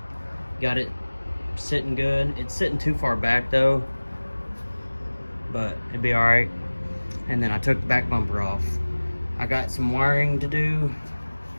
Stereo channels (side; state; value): both; inverted; correlation -1.00